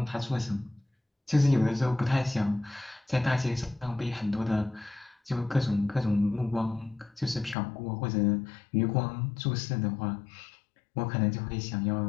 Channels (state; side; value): drops out; right; at 7.6 s